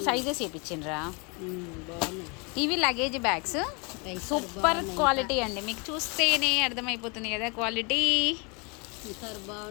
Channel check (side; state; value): right; quieter; 31.4 dB